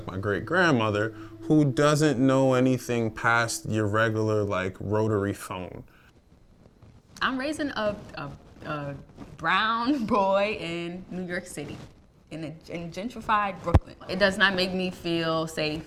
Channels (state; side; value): identical; both; correlation 1.00